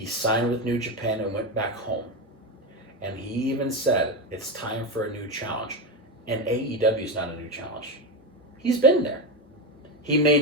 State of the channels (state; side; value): normal; both; correlation 0.14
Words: signed with New Japan and went back home. And he even said, it's time for a new challenge. And AEW is not a new challenge. He's been there. He may